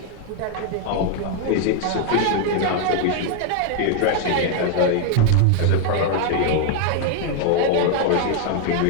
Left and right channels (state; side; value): different; both; correlation 0.01